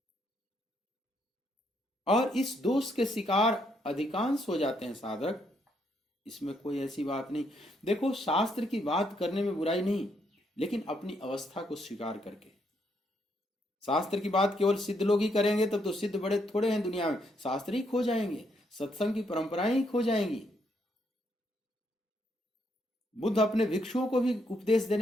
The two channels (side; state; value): both; normal; correlation 0.75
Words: और इस दोष के शिकार अधिकांश हो जाते हैं साधक, इसमें कोई ऐसी बात नहीं। देखो, शास्त्र की बात करने में बुराई नहीं, लेकिन अपनी अवस्था को स्वीकार करके। शास्त्र की बात केवल सिद्ध लोग ही करेंगे, तब तो सिद्ध बड़े थोड़े हैं दुनिया में। शास्त्र ही खो जाएंगे, सत्संग की परंपराएं ही खो जाएंगी। बुद्ध अपने भिक्षुओं को भी उपदेश